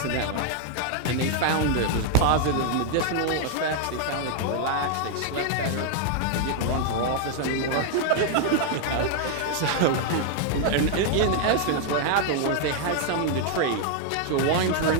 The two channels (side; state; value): both; different; correlation 0.00